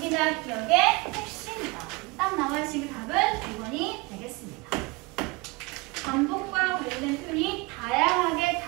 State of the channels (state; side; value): quieter; left; 25.6 dB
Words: 기억의 핵심이다. 딱 나와 있으니 답은 2번이 되겠습니다. 반복과 관련된 표현이 다양하게